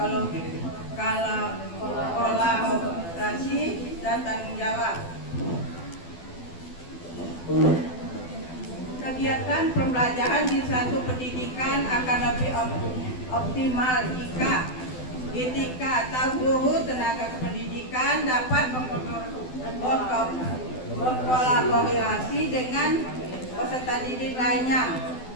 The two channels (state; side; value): late; right; 12 ms